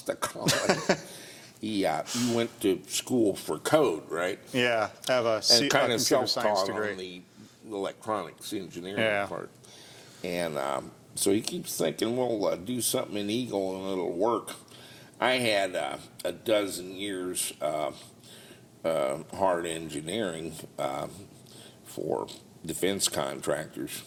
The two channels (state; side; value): identical; both; correlation 1.00